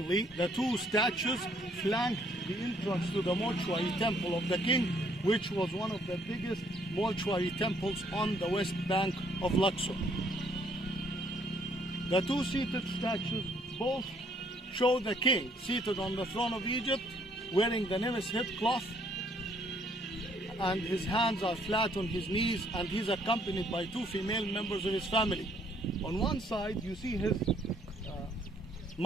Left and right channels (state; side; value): normal; both; correlation 0.66